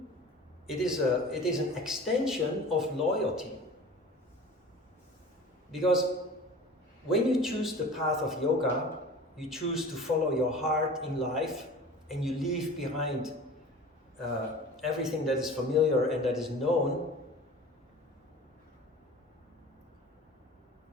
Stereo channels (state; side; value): normal; both; correlation 0.39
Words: it is an extension of loyalty. Because when you choose the path of yoga, you choose to follow your heart in life, and you leave behind everything that is familiar and that is known.